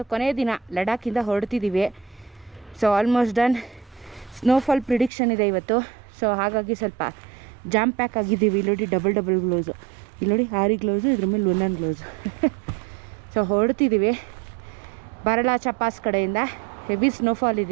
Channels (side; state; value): left; drops out; at 5.1 s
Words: ಕೊನೆಯ ದಿನ ಲಡಾಖಿಂದ ಹೊರಡ್ತಿದ್ದೀವಿ. So almost done. Snowfall prediction ಇದೆ ಇವತ್ತು. ಸೊ ಹಾಗಾಗಿ ಸ್ವಲ್ಪ ಜಾಮ್ ಪ್ಯಾಕ್ ಆಗಿದ್ದೀವಿ. ಇಲ್ಲೋಡಿ ಡಬಲ್ ಗ್ಲೌಸು, ಇಲ್ಲೋಡಿ 6 ಗ್ಲೌಸು, ಇದ್ರ ಮೇಲೆ ಒಂದೊಂದು ಗ್ಲೌಸು. ಸೊ ಹೊರಡ್ತಿದ್ದೀವಿ ಬಾರಲಾಚ ಪಾಸ್ ಕಡೆಯಿಂದ. ಹೆವಿ ಸ್ನೋಫಾಲ್